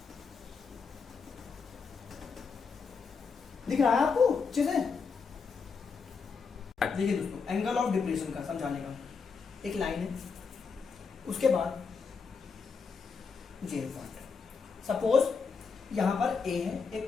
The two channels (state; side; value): quieter; right; 5.3 dB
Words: दिख रहा है आपको अच्छे से? देखिए दोस्तों, एंगल ऑफ डिप्रेशन का समझाने का एक लाइन है, उसके बाद जेल पार्ट। सपोज यहाँ पर ए है